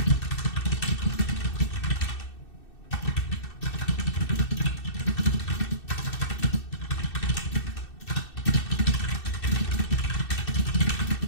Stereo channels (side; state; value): right; late; 2.6 ms